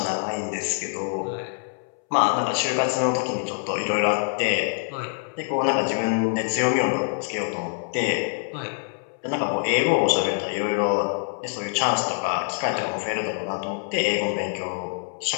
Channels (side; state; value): right; silent; 62 dB below the other